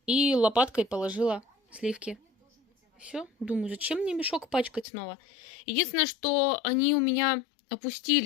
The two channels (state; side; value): drops out; right; at 4.9 s